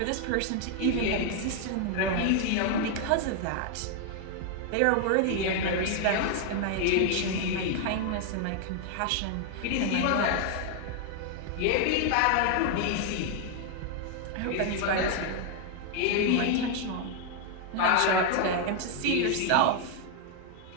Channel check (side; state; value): both; different; correlation 0.00